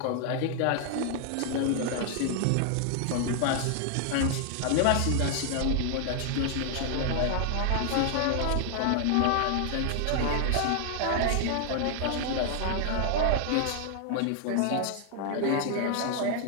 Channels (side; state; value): both; different; correlation 0.00